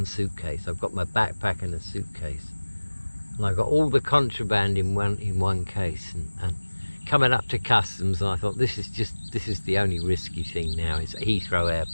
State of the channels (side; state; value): both; inverted; correlation -1.00